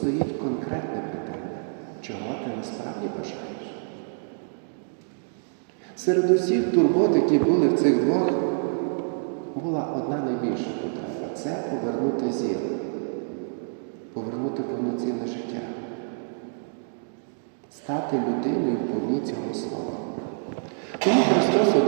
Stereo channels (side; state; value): left; silent; digital silence